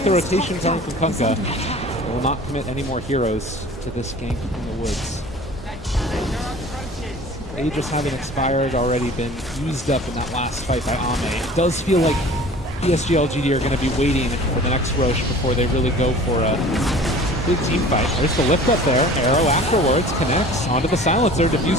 the rotation coming from Kunkka, they will not commit any more heroes to this gank in the woods. Aegis having expired, already been used up in that last fight by Ame. It does feel like PSG LGD are going to be waiting for the next Roche before they really go for a big team fight. There's the lift up there. Arrow afterwards connects onto the silencer.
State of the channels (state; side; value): normal; both; correlation 0.44